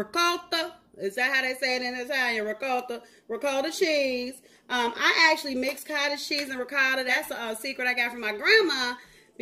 Is that how they say it in Italian? Ricotta cheese. I actually mix cottage cheese and ricotta. That's a secret I got from my grandma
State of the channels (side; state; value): both; identical; correlation 1.00